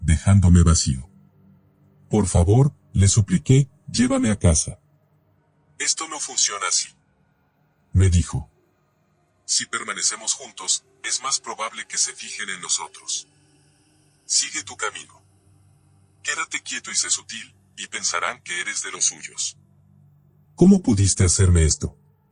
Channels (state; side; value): identical; both; correlation 1.00